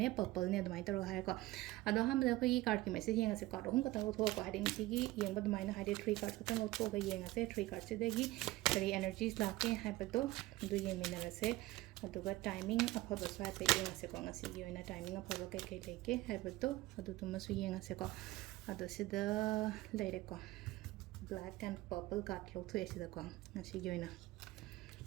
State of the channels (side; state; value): left; quieter; 18.2 dB